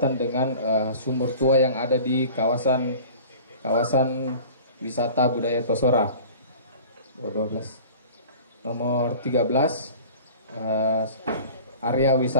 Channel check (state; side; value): inverted; both; correlation -0.43